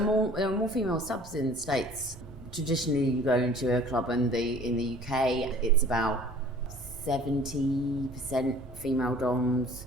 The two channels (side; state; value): both; normal; correlation 0.49